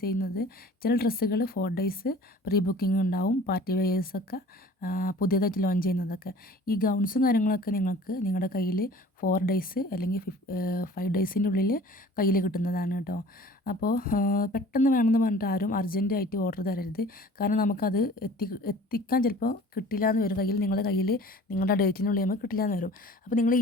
ചെയ്യുന്നത്. ചില ഡ്രസ്സുകൾ 4 ഡേയ്സ് പ്രീ ബുക്കിംഗ് ഉണ്ടാവും. പാർട്ടി വെയേഴ്സൊക്കെ പുതിയതായിട്ട് ലോഞ്ച് ചെയ്യുന്നതൊക്കെ. ഈ ഗൗൺസും കാര്യങ്ങളൊക്കെ നിങ്ങൾക്ക് നിങ്ങളുടെ കയ്യിൽ 4 ഡേയ്സ് അല്ലെങ്കിൽ 5 ഡേയ്സിൻ്റെ ഉള്ളിൽ കയ്യിൽ കിട്ടുന്നതാണ് കേട്ടോ. അപ്പോൾ പെട്ടെന്ന് വേണമെന്ന് പറഞ്ഞിട്ട് ആരും അർജൻറ്റായിട്ട് ഓർഡർ തരരുത്. കാരണം നമുക്കത് എത്തിക്കാൻ ചിലപ്പോൾ കിട്ടില്ല എന്ന് വരും. നിങ്ങളുടെ കയ്യിൽ നിങ്ങളുടെ ഡേറ്റിനുള്ളിൽ നമുക്ക് കിട്ടില്ല എന്ന് വരും. അപ്പോൾ നിങ്ങൾ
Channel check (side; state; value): both; normal; correlation 0.46